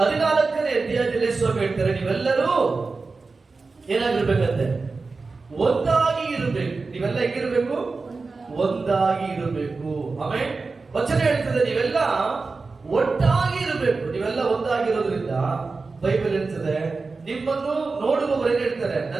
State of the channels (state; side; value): quieter; left; 4.0 dB